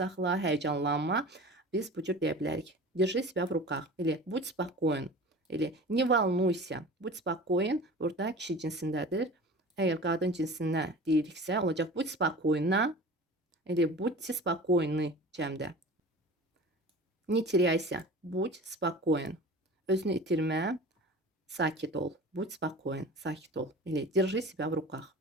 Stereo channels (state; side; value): normal; both; correlation 0.38